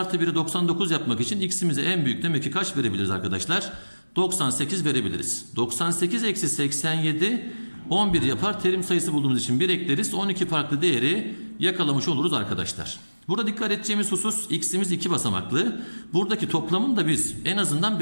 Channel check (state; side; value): inverted; both; correlation -1.00